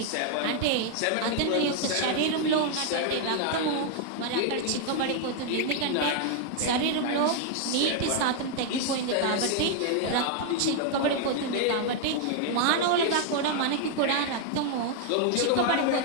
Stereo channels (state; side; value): different; both; correlation 0.00